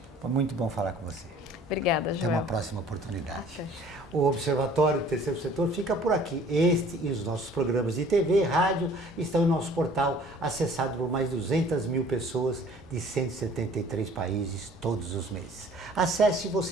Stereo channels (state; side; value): normal; both; correlation 0.53